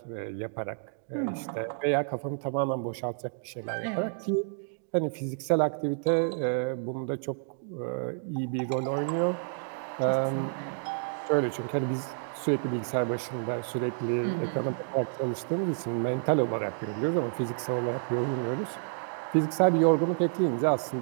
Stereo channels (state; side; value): silent; left; digital silence